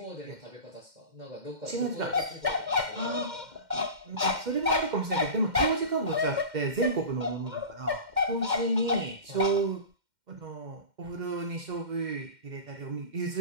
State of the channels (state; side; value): late; left; 2.1 ms